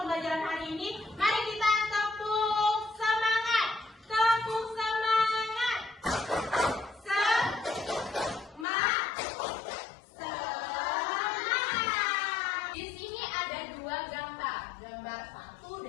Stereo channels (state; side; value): drops out; right; at 8.7 s